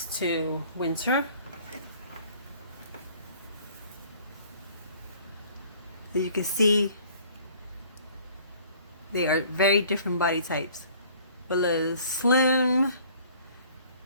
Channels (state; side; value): inverted; both; correlation -0.54